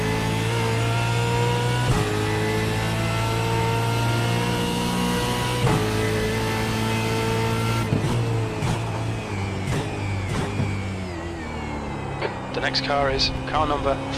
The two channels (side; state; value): both; identical; correlation 1.00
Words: The next car is car number